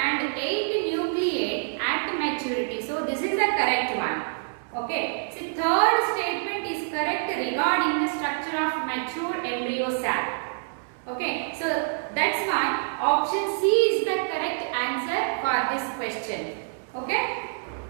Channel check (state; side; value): silent; left; 61 dB below the other